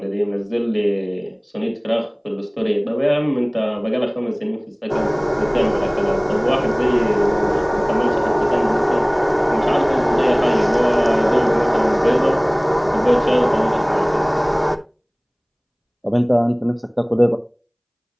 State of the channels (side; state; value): both; identical; correlation 1.00